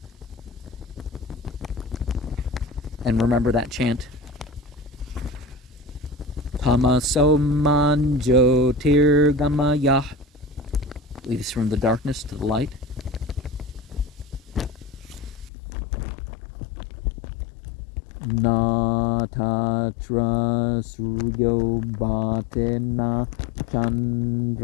And remember that chant. Tamaso manjo tirgamaya. Leads from the darkness to the light. Na Tatra Suryo Bhatena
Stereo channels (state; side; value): drops out; right; at 15.5 s